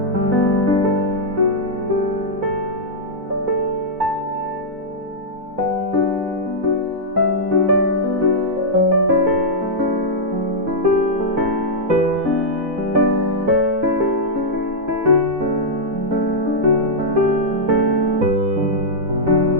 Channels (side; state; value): left; late; 4.0 ms